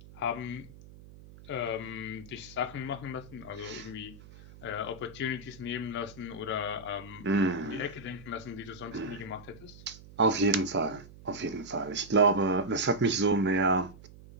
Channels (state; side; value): noise; right; hum, 19 dB below the sound